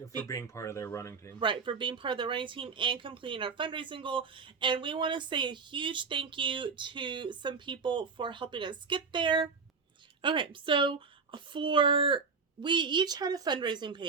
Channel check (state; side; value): quieter; left; 5.0 dB